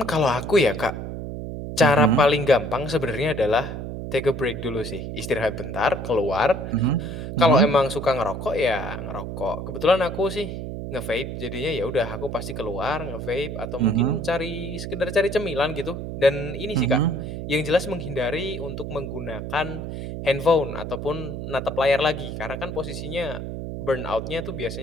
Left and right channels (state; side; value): noise; right; hum, 6 dB below the sound